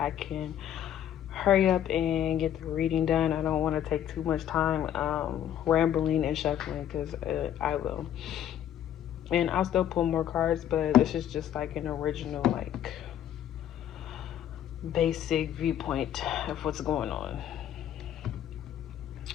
I can hurry up and get the reading done. I don't want to take too much time rambling and shuffling because I will. And I'll still pull more cards, but this is just like an original, like, basic viewpoint of what's going on.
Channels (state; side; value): quieter; right; 10.6 dB